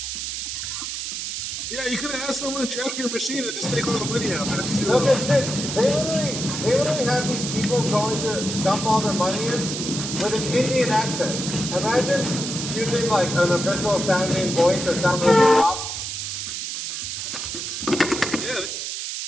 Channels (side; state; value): right; noise; hiss, 4 dB below the sound